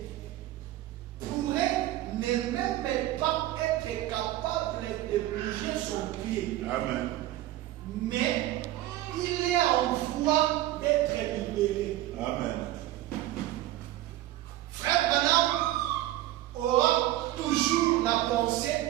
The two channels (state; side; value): quieter; left; 15.0 dB